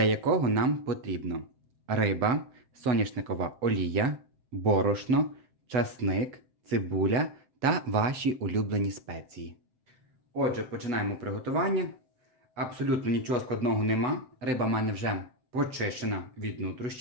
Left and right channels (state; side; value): late; left; 7.8 ms